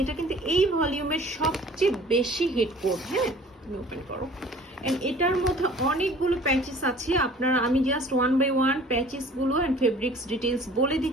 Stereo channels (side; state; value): both; normal; correlation 0.49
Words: এটা কিন্তু এই ভলিউমের সবচেয়ে বেশি হিট কোড। হ্যাঁ, তুমি ওপেন করো। এন্ড এটার মধ্যে অনেকগুলো প্যাচেস আছে। আপনারা, আমি জাস্ট ওয়ান বাই ওয়ান প্যাচেসগুলো অ্যান্ড ফেব্রিক্স ডিটেলস বলে